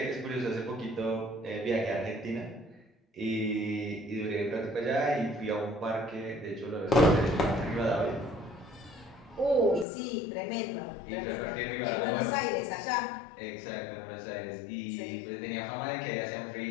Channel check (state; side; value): drops out; right; at 9.9 s